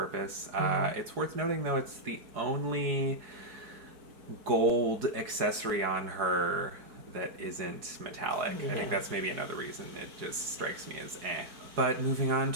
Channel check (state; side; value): late; left; 4.8 ms